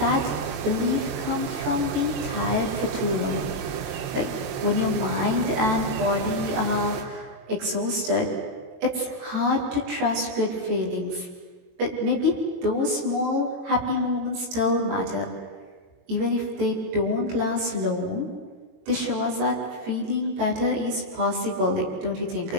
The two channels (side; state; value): left; late; 22 ms